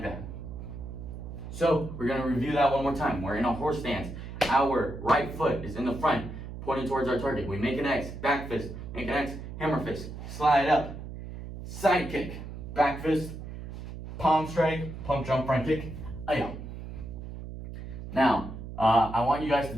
that. So we're gonna review that one more time. We're in a horse stance. Our right foot is in the front, pointing towards our target. We make an X, back fist, make an X, hammer fist, slide up, side kick, back fist, palm strike, pump, jump, front kick, ayah. Now, I want you guys to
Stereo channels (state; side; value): noise; right; hum, 10 dB below the sound